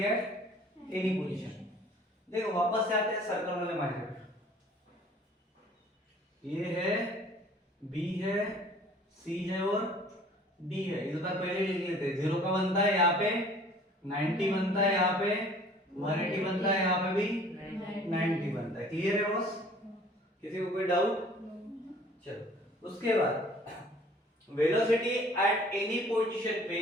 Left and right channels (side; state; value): both; normal; correlation 0.52